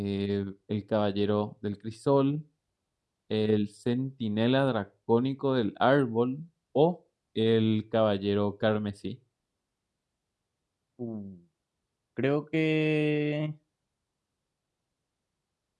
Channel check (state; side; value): identical; both; correlation 1.00